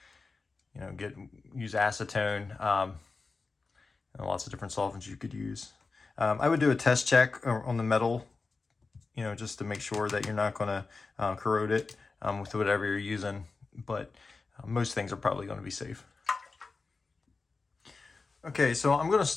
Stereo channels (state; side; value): quieter; right; 4.1 dB